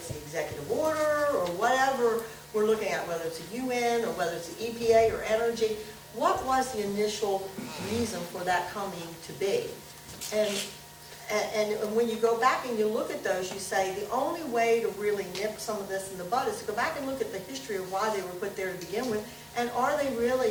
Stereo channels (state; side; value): identical; both; correlation 1.00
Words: the executive order or whatever we're looking at, whether it's the UN or whether it's the EPA or energy. What was the initial reason for that coming to be? And when you go back and you look at those, you say the only way to really nip some of this in the bud is to go back and look at the history of why they were put there to begin with, and are they